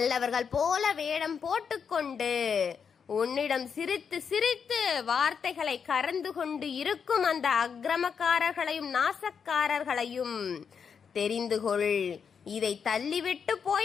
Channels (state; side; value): quieter; right; 6.6 dB